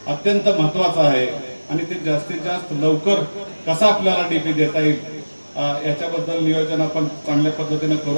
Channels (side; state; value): both; inverted; correlation -1.00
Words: अत्यंत महत्वाचा आहे आणि ते जास्तीत जास्त लवकर कसा आपल्याला डीपी देता येईल याच्याबद्दल नियोजन आपण चांगल्या पद्धतीने